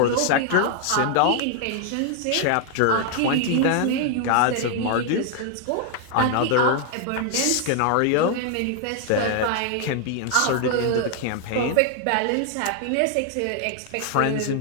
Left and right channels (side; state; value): both; different; correlation 0.00